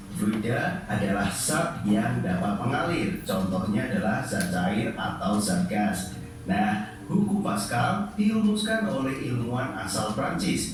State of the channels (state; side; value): identical; both; correlation 1.00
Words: Fluida adalah zat yang dapat mengalir. Contohnya adalah zat cair atau zat gas. Nah, hukum Pascal dirumuskan oleh ilmuwan asal